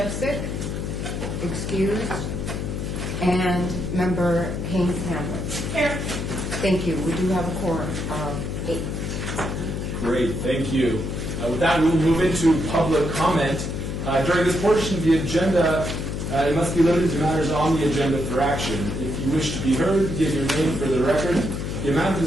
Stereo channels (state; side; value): noise; left; hum, 4 dB below the sound